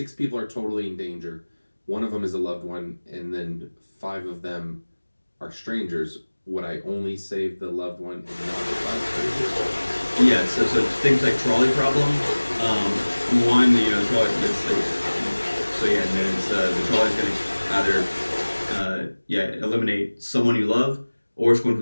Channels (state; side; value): inverted; both; correlation -1.00